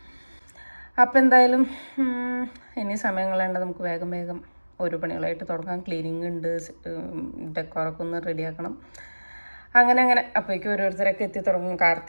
അപ്പോൾ എന്തായാലും ഇനി സമയം കളയേണ്ട, നമുക്ക് വേഗം വേഗം ഓരോ പണികളായിട്ട് തുടങ്ങാം. ക്ലീനിങ് ഉണ്ട്, ഡെക്കോറൊക്കെ ഒന്ന് റെഡിയാക്കണം. അങ്ങനെ അപ്പോഴേക്കും ഓരോരുത്തരൊക്കെ എത്തി തുടങ്ങും.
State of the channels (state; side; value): inverted; both; correlation -1.00